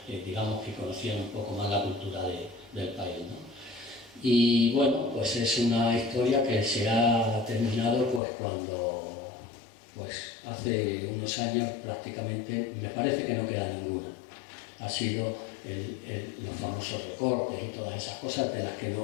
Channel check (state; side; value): drops out; right; at 8.2 s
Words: digamos que conocían un poco más la cultura del país, ¿no? Y bueno, pues es una historia que se ha terminado pues cuando, pues hace unos años prácticamente, me parece que no queda ninguna. Ha sido los famosos recortes y todas esas cosas de las que